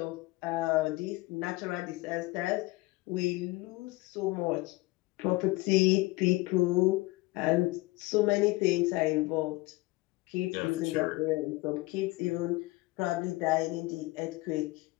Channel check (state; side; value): quieter; right; 21.4 dB